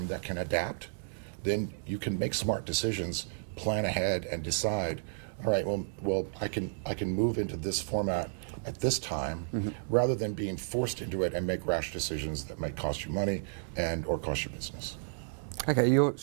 that can adapt, then you can make smart decisions, plan ahead, and decide, all right, well, I can move into this format at this time, mm-hmm. rather than being forced into it and make rash decisions that might cost you money or cost your business. Okay, you're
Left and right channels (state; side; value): silent; left; digital silence